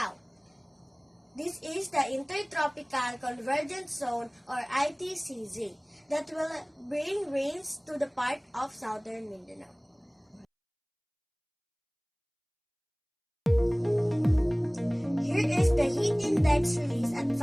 This is the Intertropical Convergence Zone or ITCZ that will bring rains to the part of southern Mindanao. Here is the heat index released at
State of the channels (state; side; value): identical; both; correlation 1.00